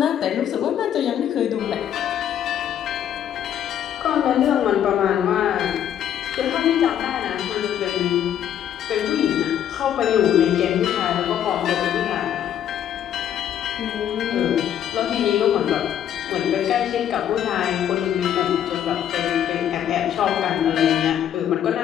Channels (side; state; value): right; quieter; 10.1 dB